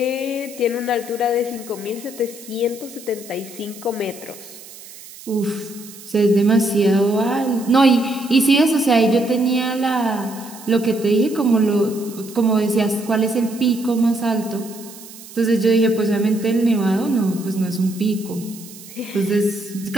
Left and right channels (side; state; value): right; noise; hiss, 17 dB below the sound